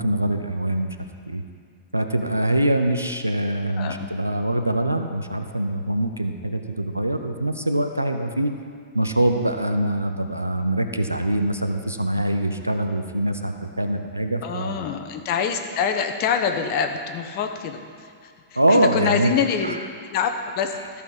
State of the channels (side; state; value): both; inverted; correlation -0.67